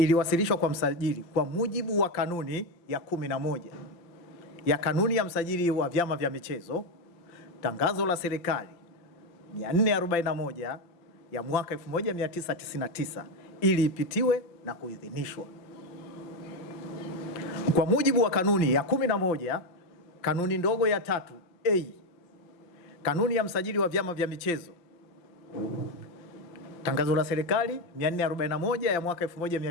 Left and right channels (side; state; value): right; late; 5.8 ms